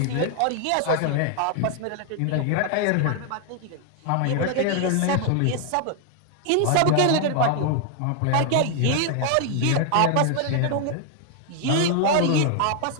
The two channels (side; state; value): both; different; correlation 0.00